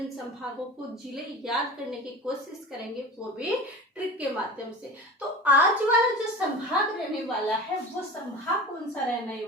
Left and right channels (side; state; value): both; normal; correlation 0.34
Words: संभागों को जिले याद करने की कोशिश करेंगे, वो भी ट्रिक के माध्यम से। तो आज वाला जो संभाग रहने वाला है वो संभाग कौन सा रहने